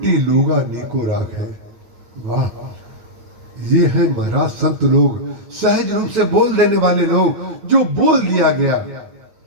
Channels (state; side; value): late; left; 9.1 ms